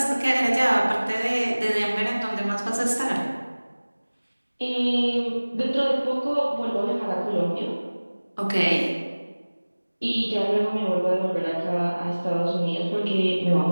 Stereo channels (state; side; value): inverted; both; correlation -1.00